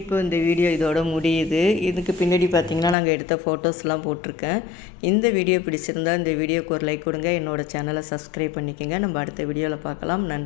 இப்போ இந்த வீடியோ இதோட முடியுது. இதுக்கு பின்னாடி பார்த்திங்கன்னா நாங்கள் எடுத்த ஃபோட்டோஸ்லாம் போட்டிருக்கேன். இந்த வீடியோ பிடிச்சிருந்தா இந்த வீடியோக்கு ஒரு லைக் கொடுங்க. என்னோடய சேனலை சப்ஸ்கிரைப் பண்ணிக்கோங்க. நம்ம அடுத்த வீடியோவில் பார்க்கலாம்.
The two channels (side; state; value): right; drops out; at 3.0 s